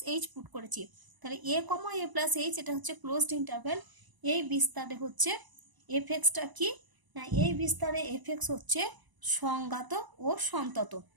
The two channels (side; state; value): left; late; 1.0 ms